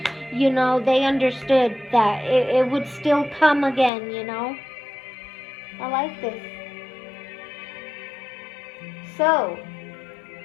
they understood that it would still come again, I like this. So,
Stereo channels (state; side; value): drops out; right; at 3.9 s